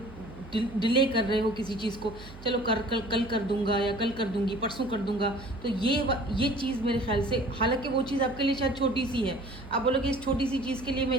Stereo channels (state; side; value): noise; right; hum, 17 dB below the sound